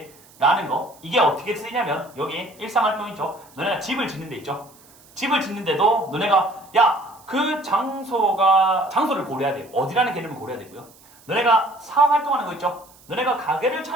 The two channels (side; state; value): right; noise; hiss, 26 dB below the sound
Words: 라는 거. 이게 어떻게 쓰이냐면 여기 일상활동 있죠? 너네가 집을 짓는 데 있죠? 집을 짓는데도 너네가 야, 그 장소를 고려해야 돼요. 어디라는 개념을 고려해야 되고요. 너네가 사업 활동하는 거 있죠? 너네가 가게를